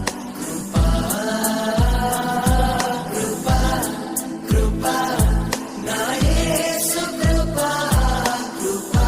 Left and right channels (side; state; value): both; identical; correlation 1.00